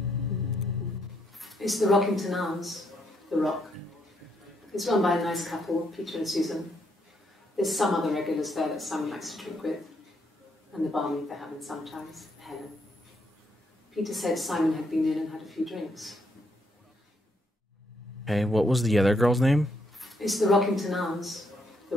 It's the Rockington Arms, The Rock. It's run by a nice couple, Peter and Susan. There's some other regulars there that Simon likes to drink with, and the barmaid they're having sometimes, Helen. Peter said Simon had been in and had a few drinks. Okay, what was the other girl's name? It's the Rockington Arms, The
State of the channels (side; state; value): both; normal; correlation 0.75